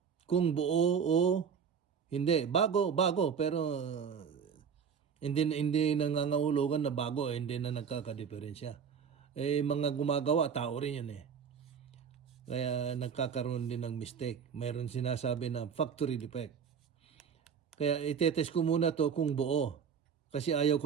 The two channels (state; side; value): quieter; left; 6.9 dB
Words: Kung buo o hindi. Bago, pero hindi nangangahulugan na bago, hindi na nagkakadiferensya. Mga gumagawa, tao rin yun eh. Kaya nagkakaroon din ng mistake. Mayroon sinasabi na factory defect. Kaya itetest ko muna to kung buo. Kasi ayaw ko